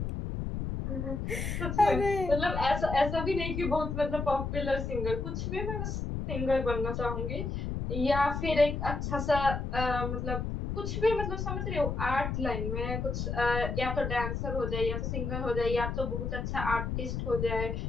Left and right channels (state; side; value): noise; left; rumble, 3 dB below the sound